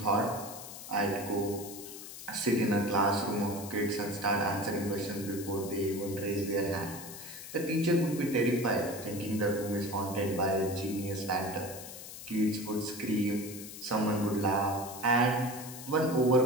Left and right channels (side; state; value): left; noise; hiss, 12 dB below the sound